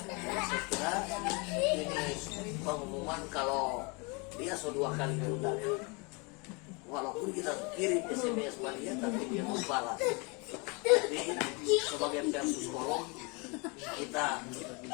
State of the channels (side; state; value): right; quieter; 29.8 dB